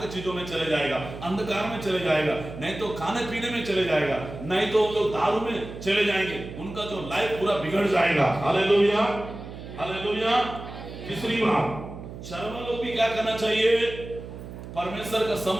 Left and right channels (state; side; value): noise; right; hum, 12 dB below the sound